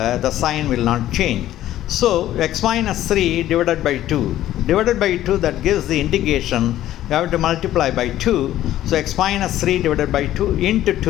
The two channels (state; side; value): quieter; right; 13.3 dB